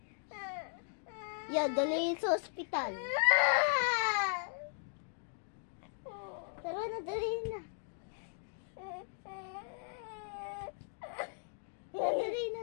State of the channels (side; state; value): right; silent; digital silence